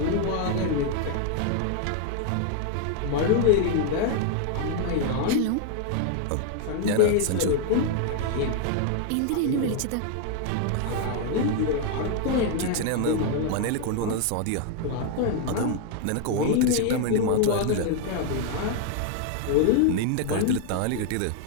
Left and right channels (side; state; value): both; different; correlation 0.00